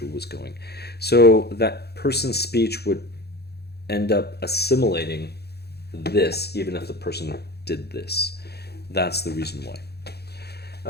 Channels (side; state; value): right; late; 0.47 ms